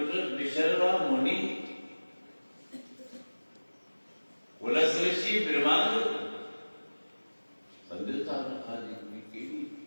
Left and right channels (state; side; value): inverted; both; correlation -1.00